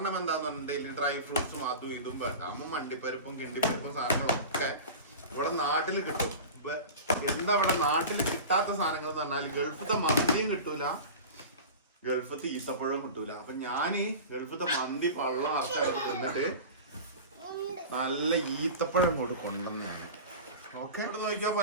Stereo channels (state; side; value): inverted; both; correlation -0.32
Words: എന്താന്ന് പറഞ്ഞിട്ടുണ്ടെങ്കിൽ ഡ്രൈ ഫ്രൂട്ട്സും അതും ഇതും അമ്മ മണ്ടിപ്പരിപ്പും കിണ്ടിപ്പരിപ്പും സാധനങ്ങളൊക്കെ ഇവിടെ നാട്ടിൽ കിട്ടും. എന്താ ഇവിടെ നാട്ടിൽ കിട്ടാത്ത സാധനങ്ങൾ എന്ന് പറഞ്ഞാൽ ഗൾഫത്തെ മന്തിയും കിട്ടൂല, ഗൾഫത്തെ ഈത്തപ്പഴവും കിട്ടൂല. അപ്പൊ ഞാന് ഗൾഫത്തെ മന്തി പള്ളം അർത്ഥം തിന്നിട്ട് നല്ല ഈത്തപ്പഴം കൂടി കൊണ്ടുവന്നാണ്. ഓക്കെ ഇവിടെ നോക്കിയോ